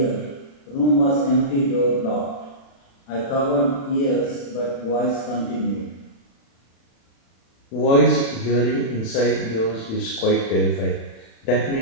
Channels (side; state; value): right; late; 36 ms